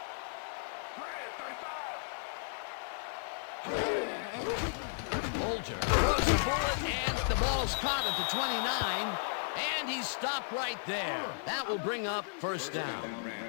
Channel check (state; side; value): silent; right; digital silence